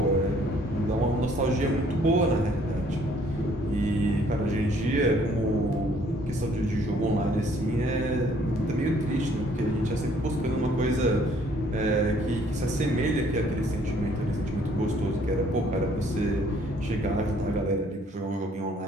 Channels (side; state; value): both; normal; correlation 0.61